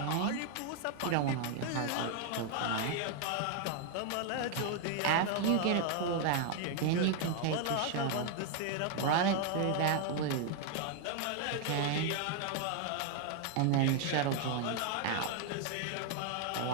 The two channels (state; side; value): different; both; correlation 0.01